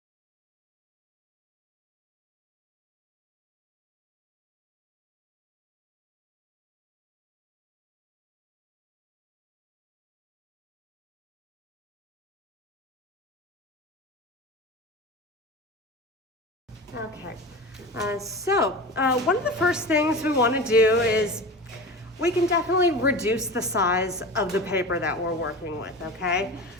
Okay, so one of the first things we want to do is we can definitely reduce the size of the paper that we're working with, okay?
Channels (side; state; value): both; normal; correlation 0.30